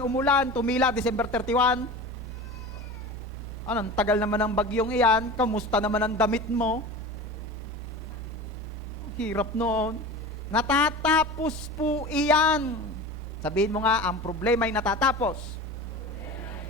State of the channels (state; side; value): normal; both; correlation 0.33